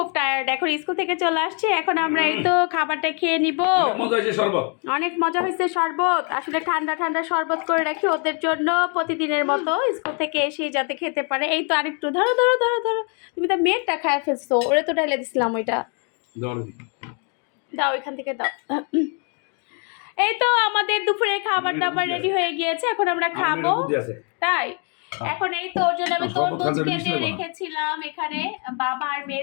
এখন স্কুল থেকে চলে আসছে। এখন আমরা এই তো খাবারটা খেয়ে নিব। অনেক মজা হয়েছে শরবত। আসলে ঠান্ডা ঠান্ডা শরবত করে রাখি ওদের জন্য প্রতিদিনের মতো, স্কুল থেকে এসে যাতে খেতে পারে। এই তো আরেকটু ধরো ধরো ধরো ধরো, তুমি তো মেয়েরটা খায় ফেলছো, ওরে তো ঢেলে দিছিলাম ওইটা। দাও ওইখান থেকে দাও। এই তো আমাদের দুপুরে খাবার দাবার রেডি হয়ে গিয়েছে, এখন আমরা খাবো। তাই এখন এই তো ওর জন্য আমি তরমুজ কেটে রেখেছিলাম এখানে বাবা আর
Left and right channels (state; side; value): quieter; right; 38.2 dB